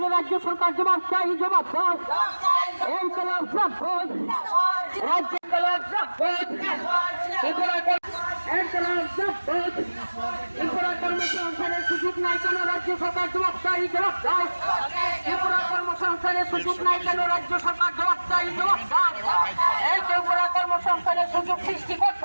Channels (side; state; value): both; inverted; correlation -1.00